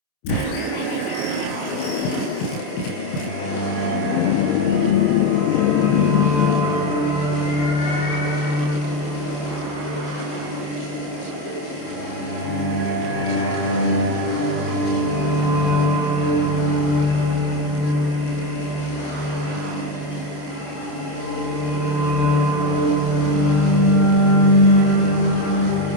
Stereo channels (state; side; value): late; right; 28 ms